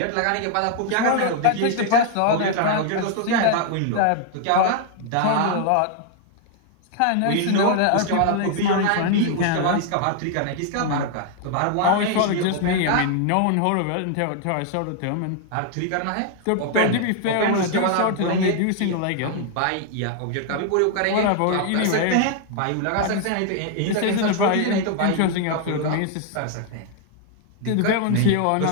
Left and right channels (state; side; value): different; both; correlation 0.00